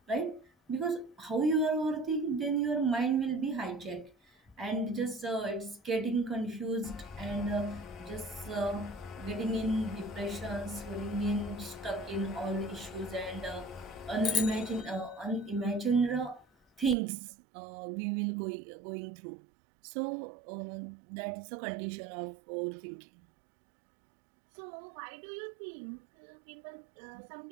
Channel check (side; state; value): left; drops out; at 16.9 s